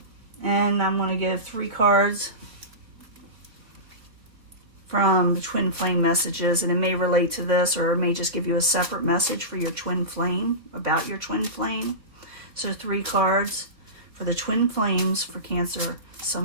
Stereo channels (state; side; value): late; left; 3.6 ms